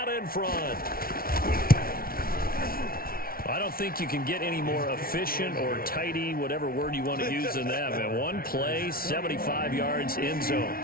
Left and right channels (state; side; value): late; right; 0.43 ms